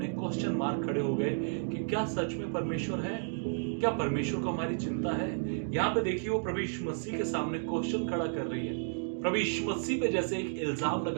क्वेश्चन मार्क खड़े हो गए कि क्या सच में परमेश्वर है? क्या परमेश्वर को हमारी चिंता है? यहां पे देखिए वो प्रभु यीशु मसीह के सामने क्वेश्चन खड़ा कर रही है, प्रभु यीशु मसीह पे जैसे एक इल्जाम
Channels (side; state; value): left; silent; digital silence